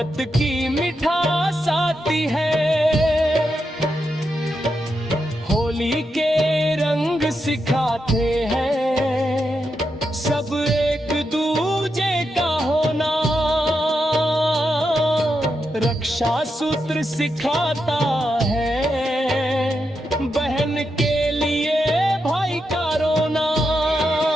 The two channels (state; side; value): normal; both; correlation 0.85